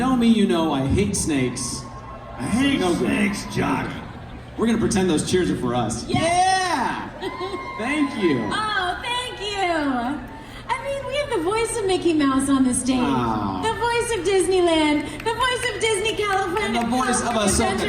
me, you know I hate snakes. I hate snakes, Jock. We're gonna pretend those cheers are for us. Yeah! Thank you. Oh, thank you. I mean, we have the voice of Mickey Mouse on the stage. Oh. The voice of Disneyland. The voice of Disney California. And the voice of Ashoka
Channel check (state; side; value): identical; both; correlation 1.00